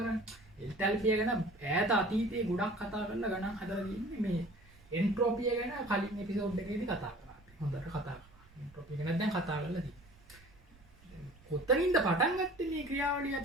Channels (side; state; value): right; noise; rumble, 26 dB below the sound